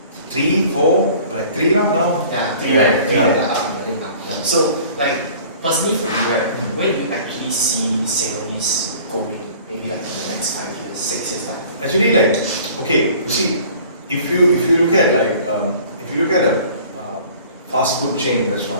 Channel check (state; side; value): inverted; both; correlation -0.48